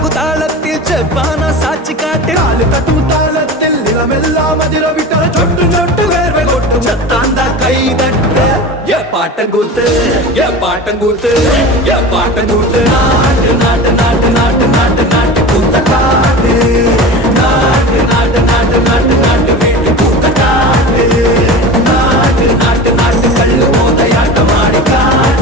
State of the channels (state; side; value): normal; both; correlation 0.32